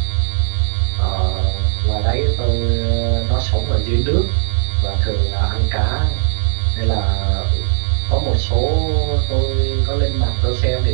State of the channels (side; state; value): left; silent; digital silence